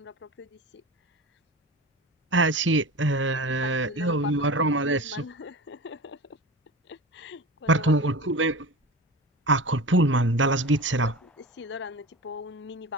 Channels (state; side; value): normal; both; correlation 0.31